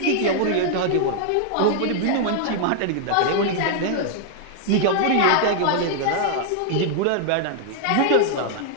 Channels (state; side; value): different; both; correlation 0.00